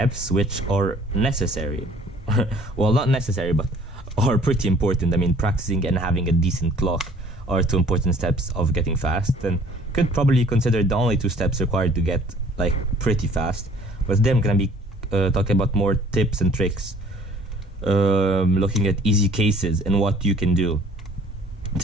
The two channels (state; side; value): normal; both; correlation 0.54